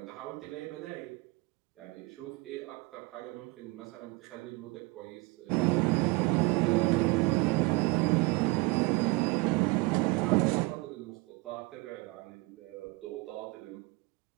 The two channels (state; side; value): quieter; left; 24.7 dB